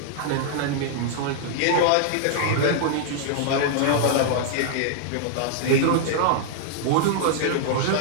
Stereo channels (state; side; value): different; both; correlation -0.01